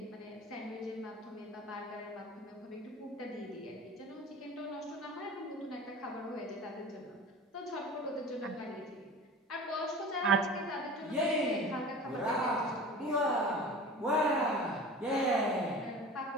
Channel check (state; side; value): normal; both; correlation 0.37